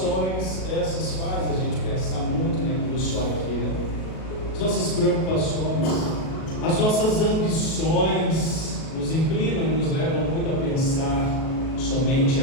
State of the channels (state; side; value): late; right; 37 ms